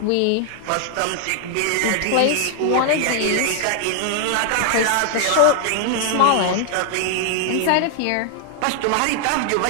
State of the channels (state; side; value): different; both; correlation 0.00